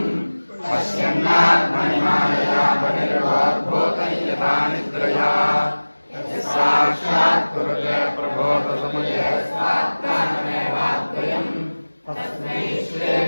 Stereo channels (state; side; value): inverted; both; correlation -1.00